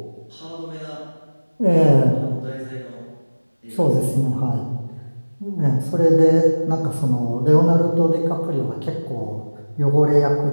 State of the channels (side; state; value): both; inverted; correlation -1.00